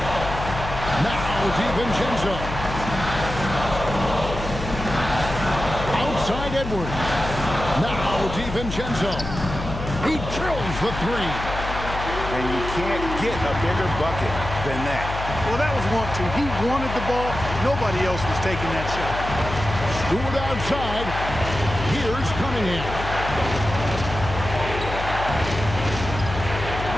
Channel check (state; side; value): noise; left; hum, 7 dB below the sound